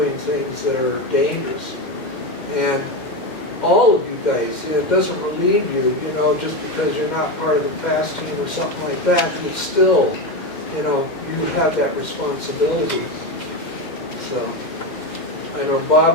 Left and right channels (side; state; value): right; late; 2.1 ms